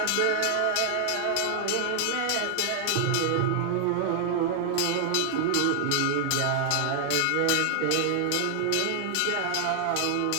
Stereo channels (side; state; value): both; different; correlation 0.00